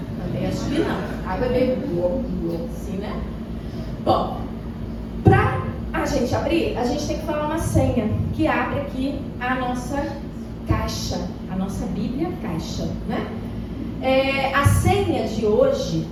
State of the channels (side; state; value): both; identical; correlation 1.00